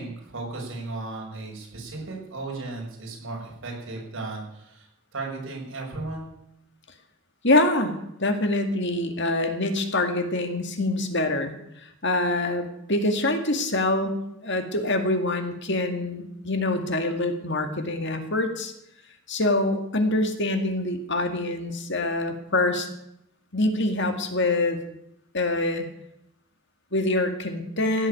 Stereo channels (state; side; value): normal; both; correlation 0.08